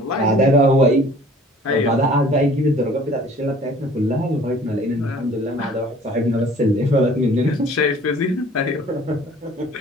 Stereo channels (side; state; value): both; normal; correlation 0.51